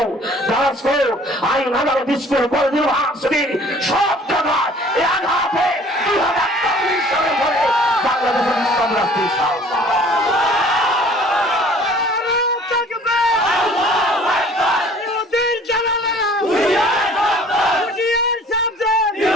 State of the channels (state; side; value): normal; both; correlation 0.52